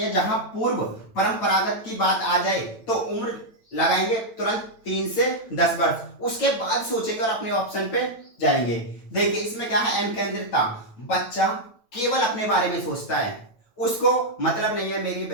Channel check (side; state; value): right; late; 9.2 ms